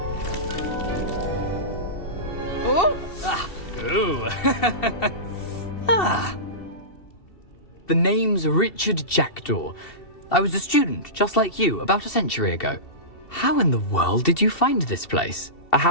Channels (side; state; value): right; late; 2.7 ms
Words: Oh! Ah! Ooh! Ah! The name's Richard Jackdaw. I was a student, just like you, about a century ago. How in the world did you find this place? A